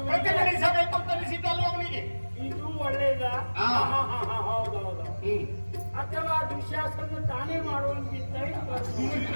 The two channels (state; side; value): inverted; both; correlation -1.00